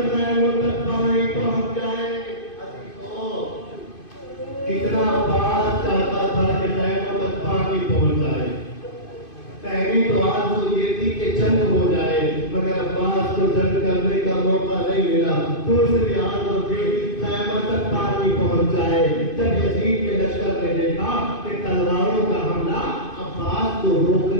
کہیں تو آرزو یہ تھی کہ جنگ ہو جائے، مگر عباس کو جنگ کرنے کا موقع نہیں ملا۔ دوسری آرزو تھی خیمہ تک پانی پہنچ جائے۔ جب یزید کے لشکر نے دیکھا کہ تلواروں کا حملہ عباس کو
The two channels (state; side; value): late; right; 2.5 ms